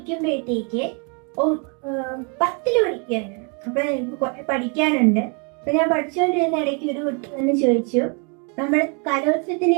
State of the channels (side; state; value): left; quieter; 36.0 dB